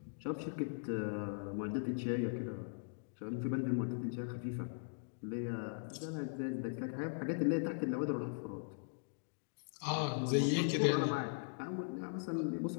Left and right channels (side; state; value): right; silent; digital silence